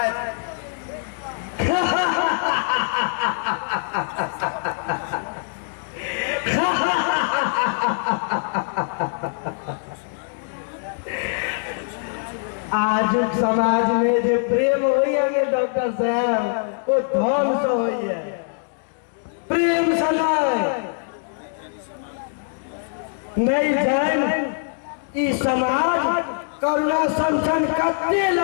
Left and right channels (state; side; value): silent; right; 63 dB below the other